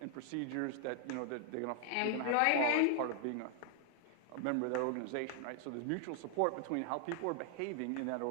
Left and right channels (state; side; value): different; both; correlation 0.00